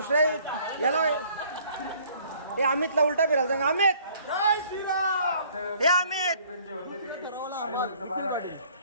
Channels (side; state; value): both; inverted; correlation -0.58